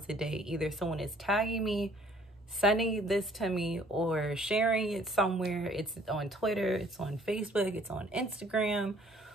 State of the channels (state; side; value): normal; both; correlation 0.58